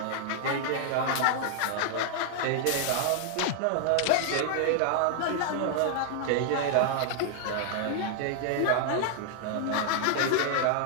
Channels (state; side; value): different; both; correlation 0.00